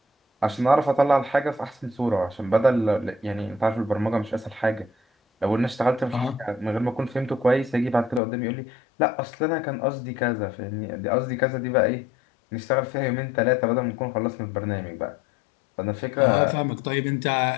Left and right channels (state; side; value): drops out; right; at 8.2 s